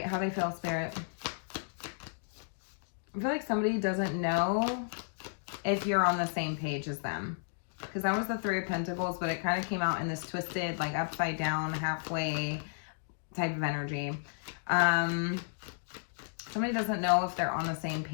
how they feel, Spirit? I feel like somebody doesn't know if you're on the same page as them. Because that was the Three of Pentacles, but it kind of came out in this twisted, like upside down, halfway type of energy. Somebody doesn't know if they're on the same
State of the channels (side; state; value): right; silent; digital silence